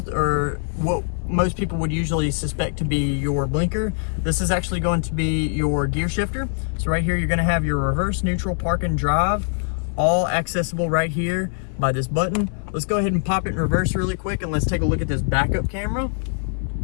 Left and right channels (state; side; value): silent; right; 62 dB below the other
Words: or what most people would usually suspect to be your blinker, this is actually going to be your gear shifter. So right here, you're gonna have your reverse, neutral, park, and drive, all accessible right here by this button. Let's go ahead and pop it in reverse really quick, and let's take a look at this backup camera.